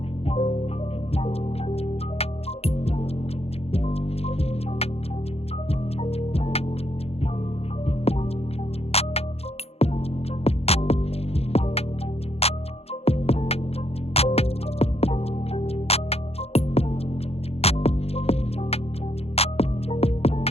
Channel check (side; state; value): right; late; 0.29 ms